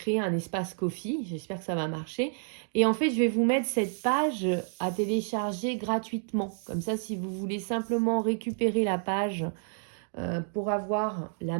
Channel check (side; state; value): left; silent; digital silence